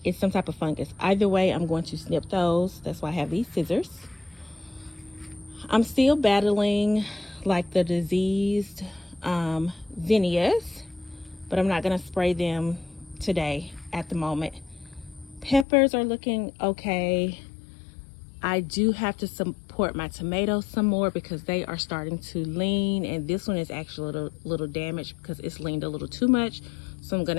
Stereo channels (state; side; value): drops out; right; at 15.7 s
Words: some type of fungus. Either way, I'm going to snip those. That's why I have these scissors. I'm still battling like the diseased zinnias, but I'm not going to spray them today at the moment. Peppers are looking okay. I do have to support my tomatoes some more because they are starting to lean, and this one is actually a little damaged because it's leaned a little too much. So I'm going